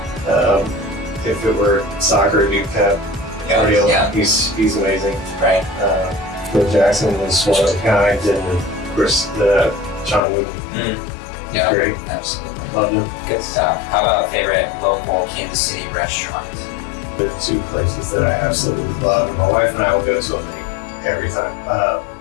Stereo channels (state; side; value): drops out; right; at 10.2 s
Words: If it were soccer, it'd be Pep Guardiola. He's amazing. Right. Phil Jackson was one of a kind, and of course John Wooden. Yeah, great. Absolutely. Loved him. Good stuff. How about favorite local Kansas City restaurants? There are two places that I absolutely love, and my wife and I will go to them every time.